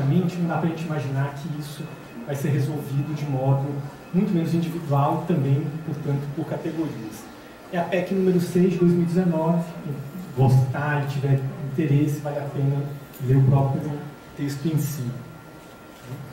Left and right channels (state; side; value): identical; both; correlation 1.00